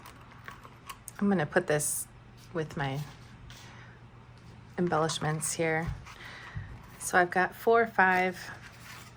I'm gonna put this with my embellishments here. So I've got 4, 5,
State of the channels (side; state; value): both; identical; correlation 1.00